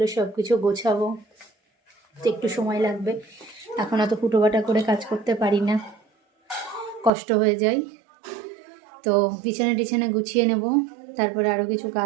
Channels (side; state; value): left; drops out; at 7.1 s